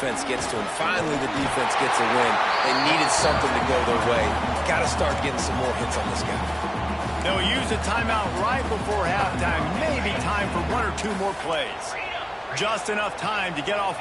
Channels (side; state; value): both; identical; correlation 1.00